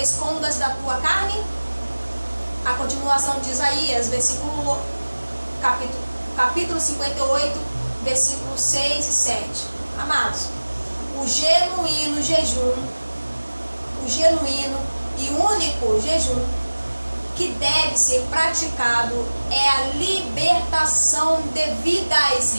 da tua carne? A continuação de Isaías, capítulo 58, versículos 6 e 7. Amados, o genuíno jejum, o genuíno e único jejum que deve ser praticado é a libertação devidas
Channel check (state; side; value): inverted; both; correlation -1.00